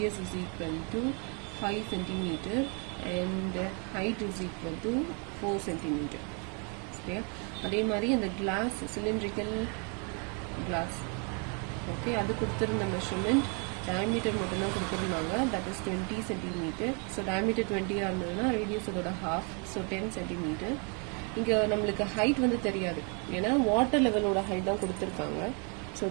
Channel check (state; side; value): quieter; left; 36.4 dB